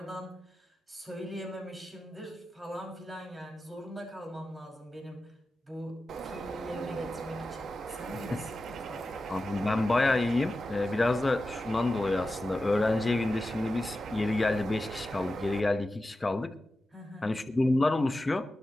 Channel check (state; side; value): normal; both; correlation 0.93